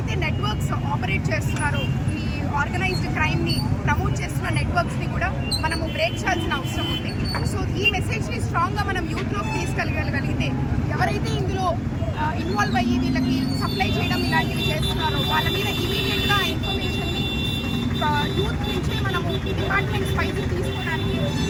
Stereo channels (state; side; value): identical; both; correlation 1.00